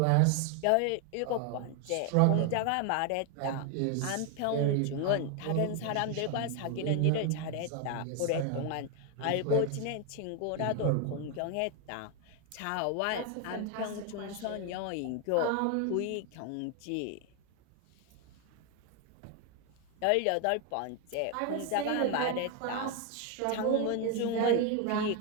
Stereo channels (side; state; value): both; different; correlation 0.01